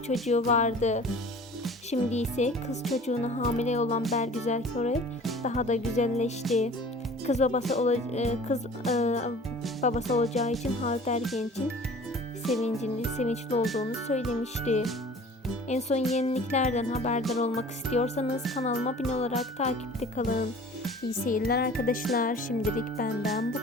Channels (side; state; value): both; normal; correlation 0.45